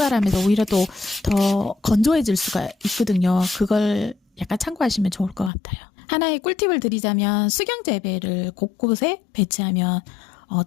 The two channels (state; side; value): drops out; right; at 5.5 s